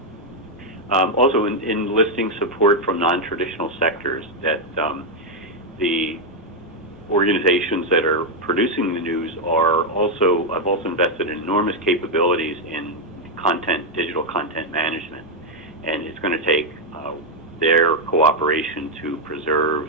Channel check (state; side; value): normal; both; correlation 0.01